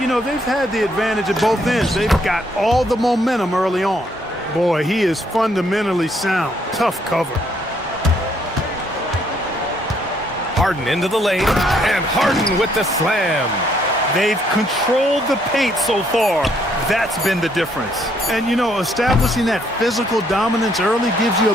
know, they've had the advantage at both ends. They've got all the momentum early on. Boy, he is fundamentally sound. Tough cover. Harden into the lane, and Harden with the slam. They've controlled the paint so far. That's been the difference. And, you know, establishing that physical dominance early gives you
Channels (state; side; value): normal; both; correlation 0.69